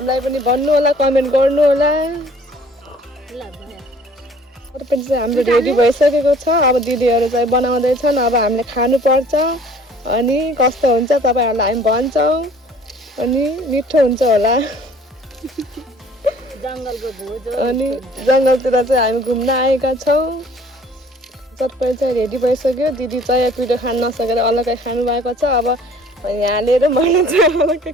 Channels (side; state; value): both; normal; correlation 0.53